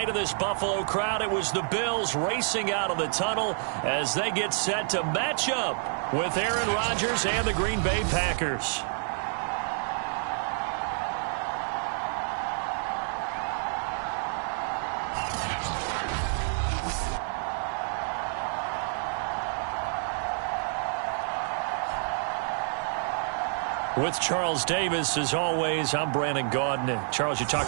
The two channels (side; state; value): left; silent; 59 dB below the other